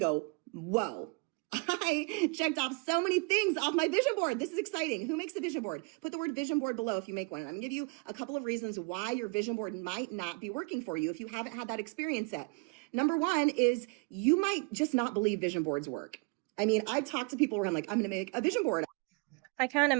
whoa, I checked off so many things off my vision board. This is exciting. Who makes a vision board? Put the word vision board below if you make one. And I'm going to give you a couple of reasons why your vision board might not be working for you if you haven't had that experience yet. Number one is you might just not believe vision boards work. I mean, I talk to people where I'm like, I'm going to make a vision board. I can't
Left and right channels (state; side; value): quieter; left; 31.5 dB